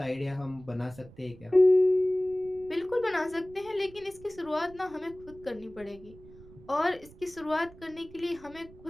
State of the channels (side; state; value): right; noise; rumble, 21 dB below the sound